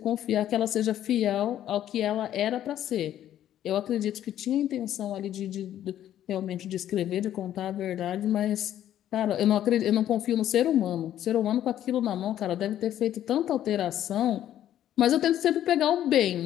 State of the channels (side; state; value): right; quieter; 11.6 dB